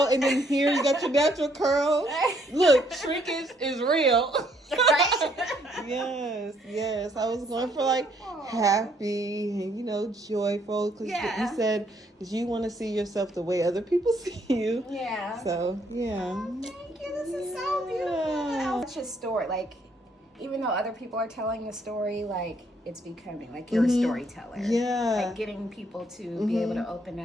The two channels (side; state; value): both; normal; correlation 0.68